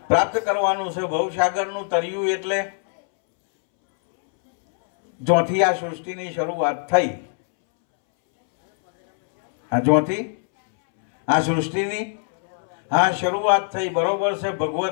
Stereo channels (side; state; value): right; silent; 64 dB below the other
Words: પ્રાપ્ત કરવાનું છે. ભવસાગરનું તરિયું એટલે જોથી આ સૃષ્ટિની શરૂઆત થઈ, આ જોથી આ સૃષ્ટિની આ શરૂઆત થઈ, બરોબર છે.